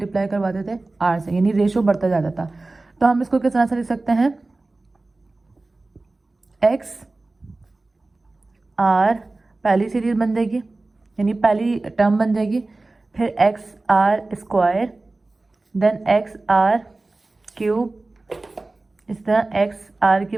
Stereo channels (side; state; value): left; quieter; 3.2 dB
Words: करवाते थे r से, यानी रेशो बढ़ता जाता था। तो हम इसको किस तरह से लिख सकते हैं? x r पहली सीरीज बन जाएगी, यानी पहली टर्म बन जाएगी। फिर x r square, then x r cube, इस तरह एक्स आर की